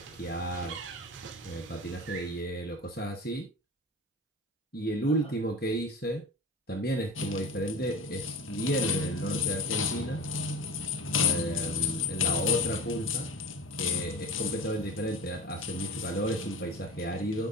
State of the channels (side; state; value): both; normal; correlation 0.33